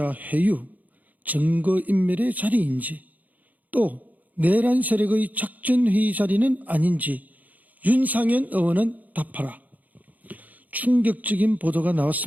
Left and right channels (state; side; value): late; left; 0.079 ms